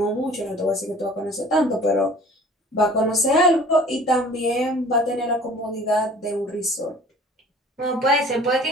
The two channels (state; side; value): normal; both; correlation 0.48